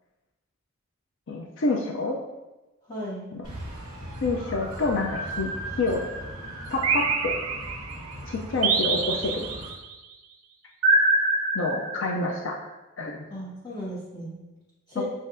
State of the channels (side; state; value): both; normal; correlation -0.01